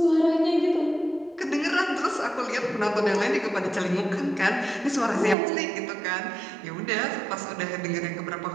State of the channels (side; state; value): left; drops out; at 5.4 s